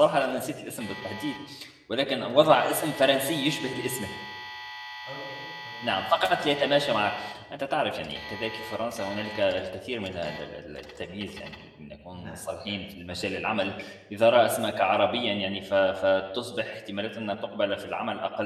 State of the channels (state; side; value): identical; both; correlation 1.00